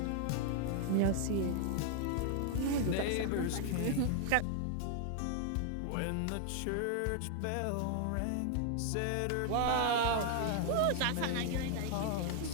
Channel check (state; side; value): different; both; correlation 0.00